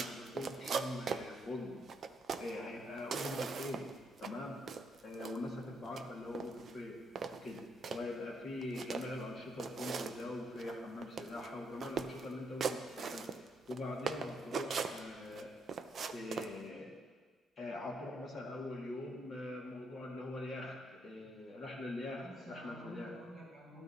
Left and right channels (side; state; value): both; normal; correlation 0.75